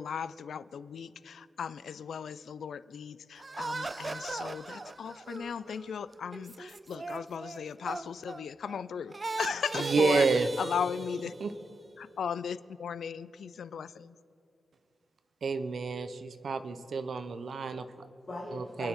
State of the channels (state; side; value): normal; both; correlation 0.82